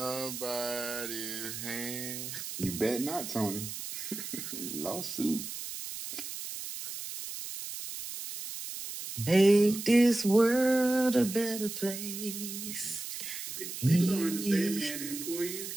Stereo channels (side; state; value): right; noise; hiss, 8 dB below the sound